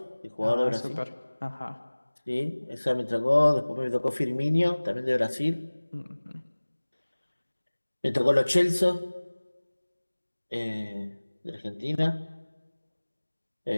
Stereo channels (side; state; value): both; inverted; correlation -1.00